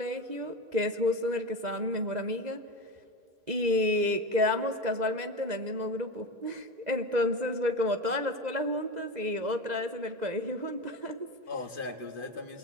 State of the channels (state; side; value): late; left; 2.0 ms